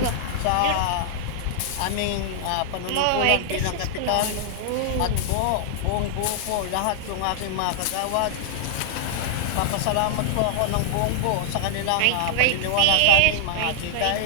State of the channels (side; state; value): both; different; correlation -0.01